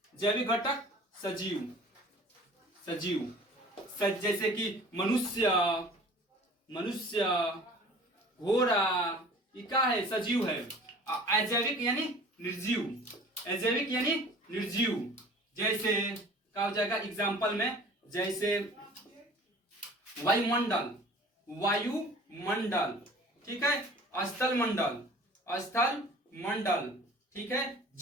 जैविक घटक सजीव जैसे कि मनुष्य घोड़ा, ये क्या है? सजीव है। अजैविक यानी निर्जीव, जैसे क्या हो जाएगा एग्जाम्पल में? जैसे वायुमंडल, ठीक है, स्थल मंडल, ठीक है,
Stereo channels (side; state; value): both; normal; correlation 0.46